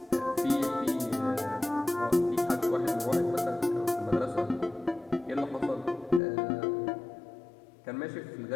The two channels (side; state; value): right; drops out; at 6.2 s